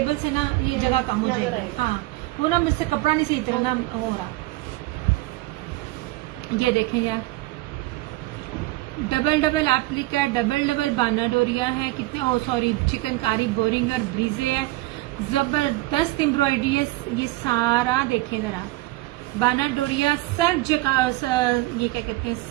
से ना ये जगह कम हो जाएगी। हाँ वो ना मुझसे कपड़ा नहीं सही तरह ना हो रहा। ये देखें यार, डबल डबल एप्लिक है, डबल डबल बाना डोरिया है, कितने ओ सॉरी चिकनकारी बोरिंग और ब्रीजे है, जबरदस्त एम्ब्रॉयडरी है। ये सारा देखें जरा, बाना डोरिया सर्फ ये क्या कहते हैं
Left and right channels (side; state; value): left; quieter; 19.6 dB